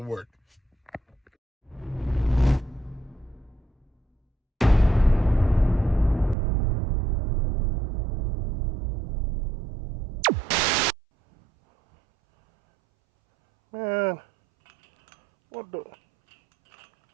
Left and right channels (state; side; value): drops out; left; at 6.4 s